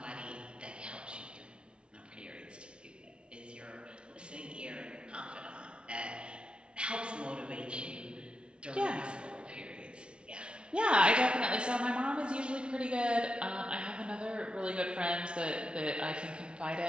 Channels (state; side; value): late; left; 0.057 ms